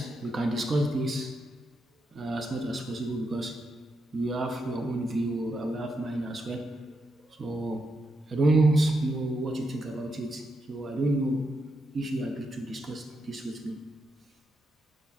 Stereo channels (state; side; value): normal; both; correlation 0.83